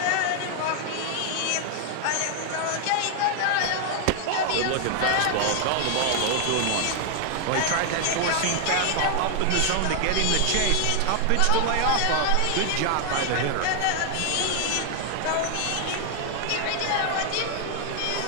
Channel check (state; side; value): different; both; correlation 0.00